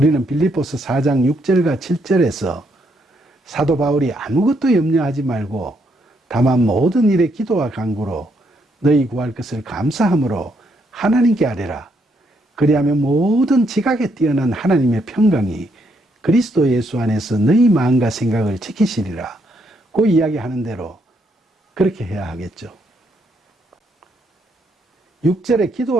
빌립보서 4장 6절과 7절에서 사도 바울이 아무것도 염려하지 말고 다만 모든 일에 기도와 간구로 너희 구할 것을 감사함으로 하나님께 아뢰라. 그리하면 모든 지각에 뛰어난 하나님의 평강이 그리스도 예수 안에서 너희 마음과 생각을 지키시리라. 그 이야기하는 대로 그렇게 해야 하겠죠. 6절에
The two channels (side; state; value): both; normal; correlation 0.75